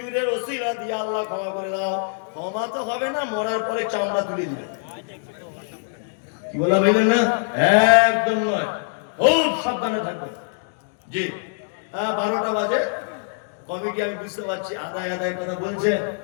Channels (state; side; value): silent; right; 63 dB below the other